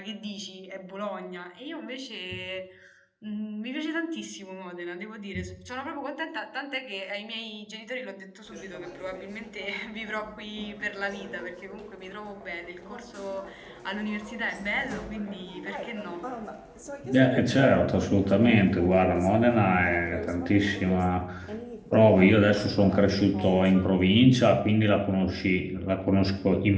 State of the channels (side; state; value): both; identical; correlation 1.00